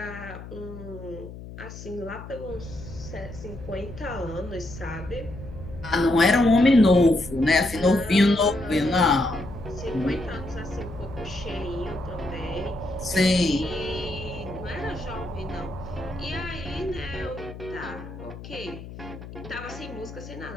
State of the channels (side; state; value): left; noise; hum, 13 dB below the sound